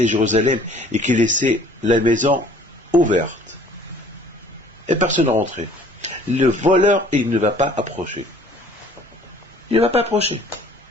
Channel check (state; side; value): normal; both; correlation 0.54